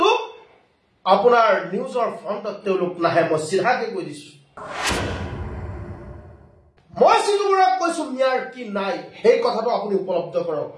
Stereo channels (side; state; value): both; identical; correlation 1.00